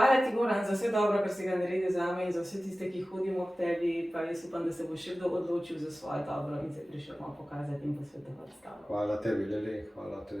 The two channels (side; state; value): both; normal; correlation 0.96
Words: ti, Goran, za vse dobro, kar si ga naredil zame in za vse tiste, ki hodimo k tebi, pa jaz upam, da se bo še kdo odločil za svoje dobro in se prišel malo pokazati in posvetovati s tabo. Hvala tebi, Lili, hvala